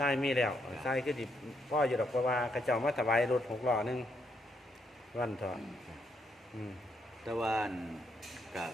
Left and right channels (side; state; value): both; normal; correlation 0.76